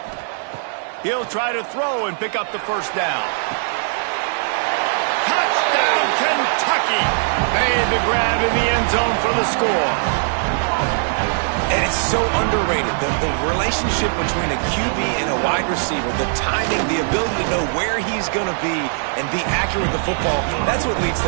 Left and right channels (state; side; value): silent; left; 66 dB below the other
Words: He'll try to throw and pick up the first down. Touchdown, Kentucky! Made the grab in the end zone for the score. And it's so underrated, the relationship between a QB and a wide receiver, the timing, the ability to know where he's going to be and be accurate with the football, that's what leads